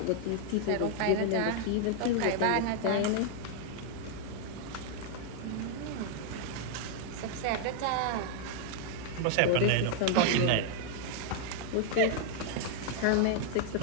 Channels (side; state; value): both; different; correlation -0.01